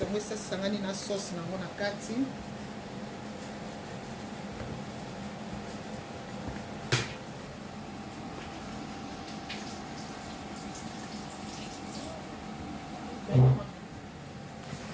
ngo esa sangani na sauce nango na kati.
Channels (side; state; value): both; identical; correlation 1.00